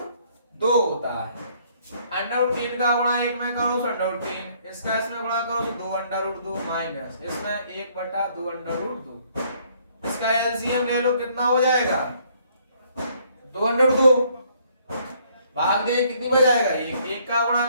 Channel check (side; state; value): both; inverted; correlation -0.64